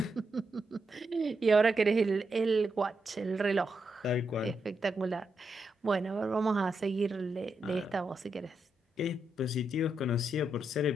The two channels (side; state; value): both; normal; correlation 0.83